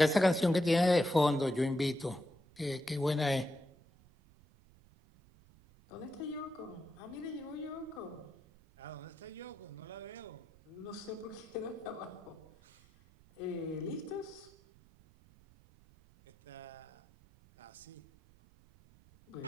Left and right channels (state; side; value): noise; right; rumble, 26 dB below the sound